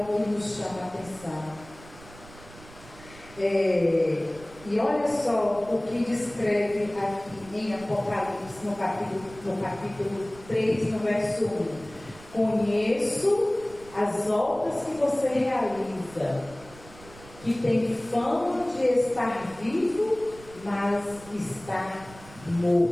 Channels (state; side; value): noise; right; rumble, 20 dB below the sound